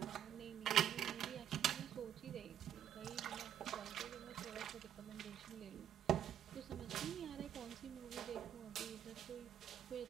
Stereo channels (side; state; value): left; quieter; 10.1 dB